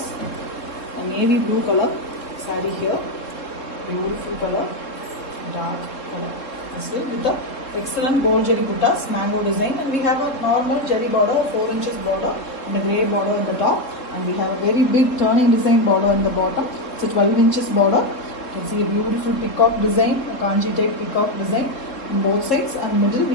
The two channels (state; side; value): late; right; 3.7 ms